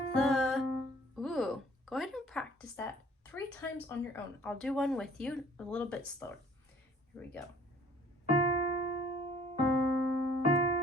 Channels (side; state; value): both; normal; correlation 0.54